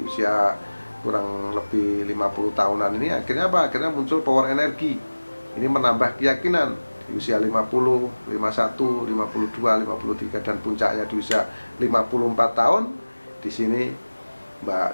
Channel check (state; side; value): inverted; both; correlation -1.00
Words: usia kurang lebih 50 tahunan ini akhirnya apa? Akhirnya muncul power energi. Ini menambah keyakinan di usia 50, 51, 52, 53 dan puncaknya di usia 54 tahun. Di sini Mbak